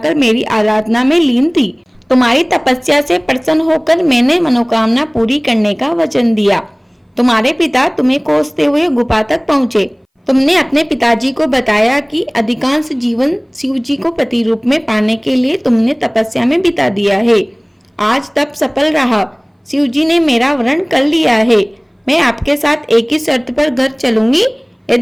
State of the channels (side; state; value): both; identical; correlation 1.00